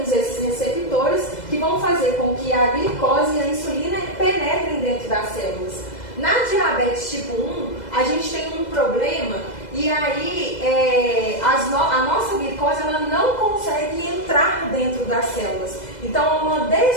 esses receptores que vão fazer com que a glicose e a insulina penetrem dentro das células. Na diabetes tipo 1, a gente tem um problema e aí a nossa glicose ela não consegue entrar dentro das células. Então, há uma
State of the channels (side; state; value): right; late; 2.0 ms